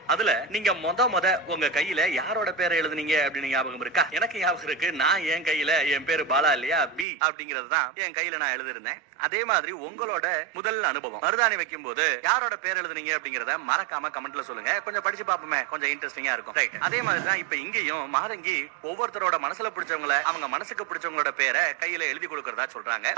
அதுல நீங்க முத உங்க கையில யாரோட பேரை எழுதுனீங்க அப்படின்னு ஞாபகம் இருக்கா? எனக்கு ஞாபகம் இருக்கு. நான் என் கையில என் பேரு பாலா இல்லையா, பி அப்படிங்கறது தான் என் கையில நான் எழுதிருந்தேன். அதே மாதிரி உங்களோட முதல் அனுபவம் மருதாணி வைக்கும் போது யாரோட பேர் எழுதுனீங்க அப்படிங்கறத மறக்காம கமெண்ட்ல சொல்லுங்க. கொஞ்சம் படிச்சு பாப்போமே, கொஞ்சம் இன்ட்ரெஸ்டிங்கா இருக்கும். ரைட். அதே மாதிரி தான் இப்ப இங்கேயும் மாதங்கி ஒவ்வொருத்தரோட மனசுல பிடிச்சவங்கள அவங்க மனசுக்கு பிடிச்சவங்களோட பேரை கையில எழுதி கொடுக்கறதா சொல்றாங்க.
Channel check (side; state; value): left; drops out; at 7.1 s